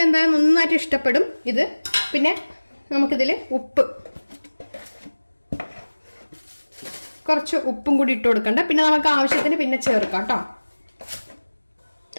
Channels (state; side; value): inverted; both; correlation -1.00